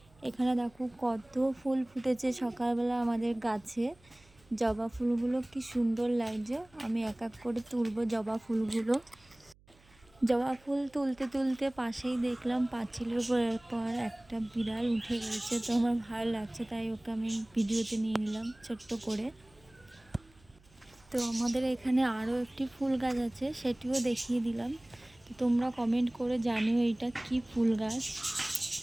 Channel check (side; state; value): right; noise; hum, 29 dB below the sound